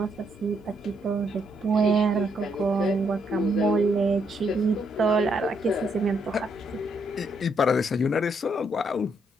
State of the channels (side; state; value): both; normal; correlation 0.75